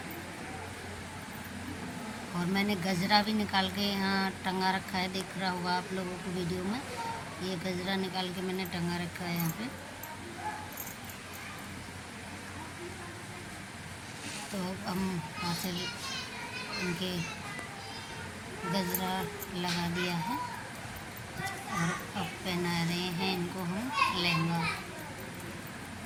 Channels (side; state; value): both; identical; correlation 1.00